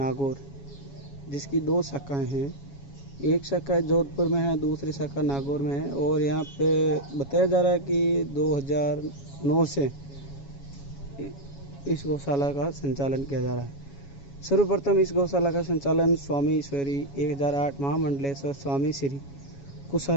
जिसकी 2 शाखाएं हैं, एक शाखा जोधपुर में है, दूसरी शाखा नागौर में है। और यहाँ पे बताया जा रहा है कि 2009 से इस गौशाला का संचालन किया जा रहा है। सर्वप्रथम इस गौशाला का संचालन स्वामी ईश्वरी 1008 महामंडलेश्वर स्वामी श्री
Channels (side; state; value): right; late; 7.2 ms